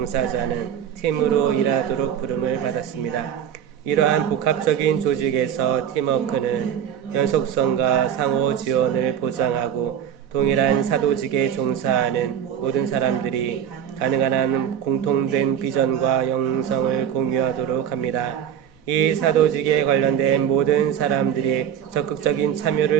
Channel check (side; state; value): left; quieter; 9.1 dB